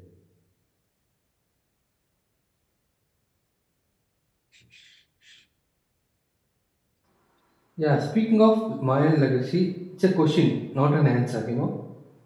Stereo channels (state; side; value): identical; both; correlation 1.00